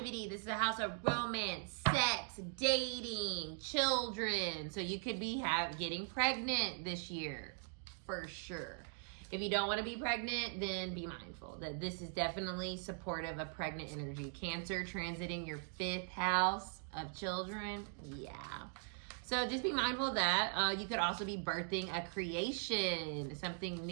This is a house of romance, sex, dating, children. So you could be getting pregnant this year. For sure. If you don't want to be pregnant, then be mindful that this is definitely supportive of pregnant energy. Cancer transiting your 5th house of children. Yeah. So just be mindful of that. You could also be birthing a creation, something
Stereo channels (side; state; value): left; silent; 51 dB below the other